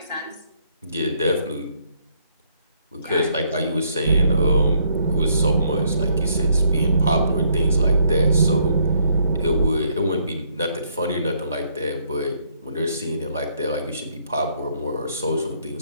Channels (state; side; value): inverted; both; correlation -0.69